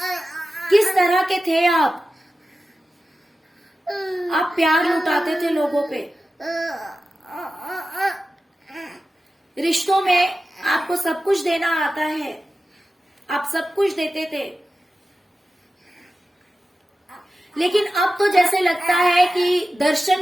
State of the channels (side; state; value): both; normal; correlation 0.94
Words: किस तरह के थे आप प्यार लुटाते थे लोगों पे। रिश्तों में आपको सब कुछ देना आता है, आप सब कुछ देते थे, लेकिन अब तो जैसे लगता है कि दर्शन